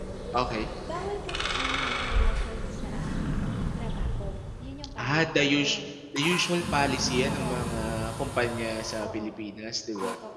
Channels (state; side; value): identical; both; correlation 1.00